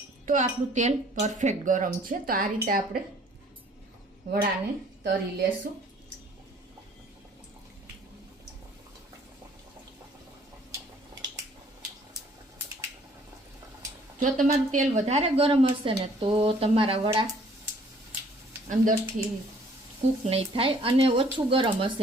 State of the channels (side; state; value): both; normal; correlation 0.58